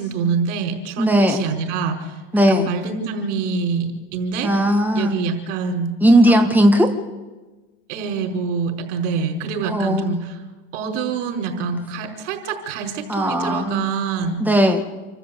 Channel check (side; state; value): both; normal; correlation 0.59